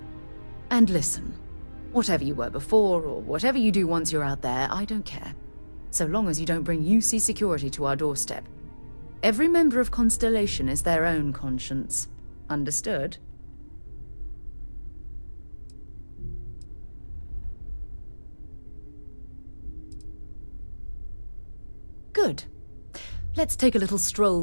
And listen, whatever you were before, or whatever you do once you're out there, I don't care. So long as you don't bring UC security to our doorstep. Every member of Constellation is their own conscience. Understood? Good. Let's take a little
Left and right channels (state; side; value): inverted; both; correlation -1.00